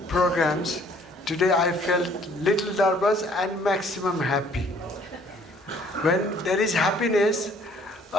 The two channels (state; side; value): normal; both; correlation 0.59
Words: programs, today I felt little nervous and maximum happy. When there is happiness,